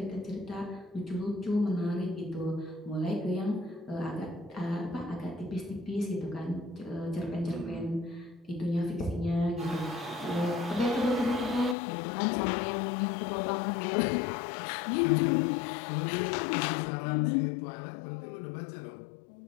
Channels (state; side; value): drops out; right; at 11.8 s